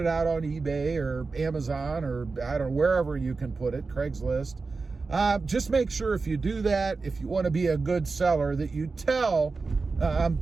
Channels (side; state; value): left; quieter; 4.1 dB